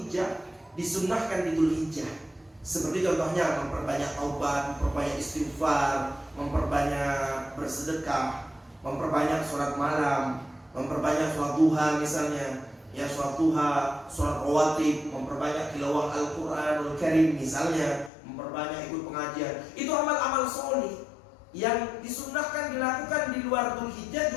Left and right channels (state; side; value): drops out; right; at 18.1 s